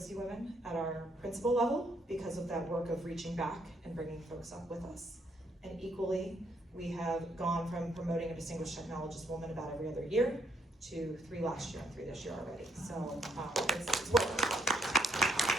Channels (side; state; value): both; normal; correlation 0.73